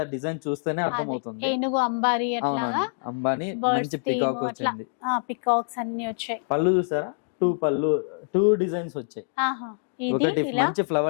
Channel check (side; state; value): right; silent; digital silence